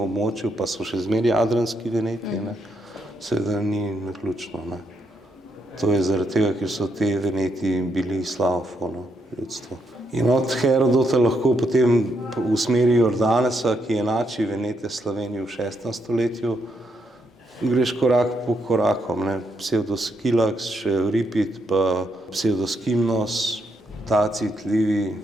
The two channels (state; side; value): normal; both; correlation 0.78